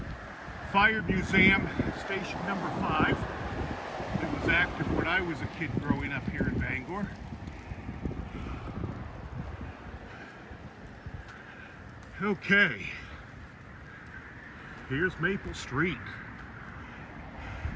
Fire Museum, station number 5. It was active when I was a kid growing up here in Bangor. Okay, here's Maple Street.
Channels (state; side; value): identical; both; correlation 1.00